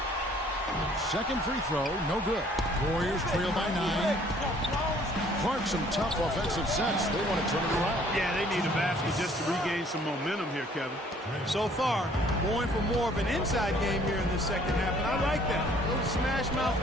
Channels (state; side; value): normal; both; correlation 0.58